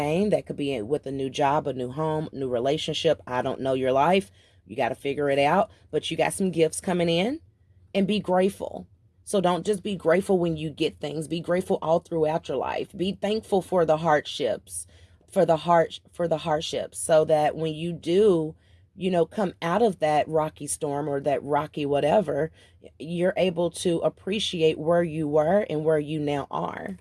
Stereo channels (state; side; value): identical; both; correlation 1.00